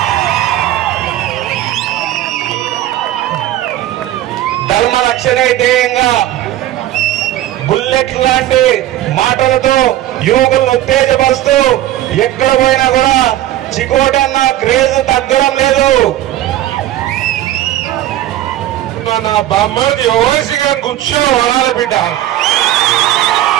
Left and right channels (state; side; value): quieter; left; 13.8 dB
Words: ధర్మ రక్షణే ధ్యేయంగా బుల్లెట్ లాంటి మాటలతో యువకులను ఉత్తేజపరుస్తూ ఎక్కడ పోయినా కూడా చికోటి అన్న క్రేజ్ తగ్గడం లేదు. నా బామ్మది ఓవైసీగా కూర్చొని వడాలి బిడ్డ.